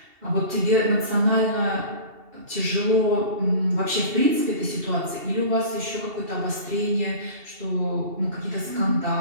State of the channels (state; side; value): late; left; 2.7 ms